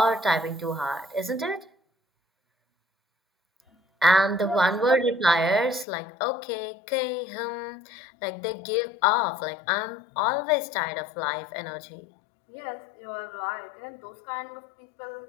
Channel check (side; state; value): right; drops out; at 5.9 s